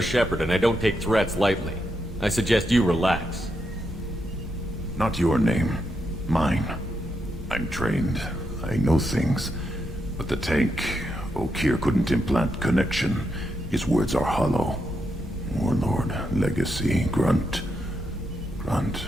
Shepard, and I don't take threats lightly. I suggest you relax. Not your name. Mine. I'm trained. I know things. But the tank, Okeer couldn't implant connection. His words are hollow. Warlord, Legacy, Grunt.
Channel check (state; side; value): normal; both; correlation 0.82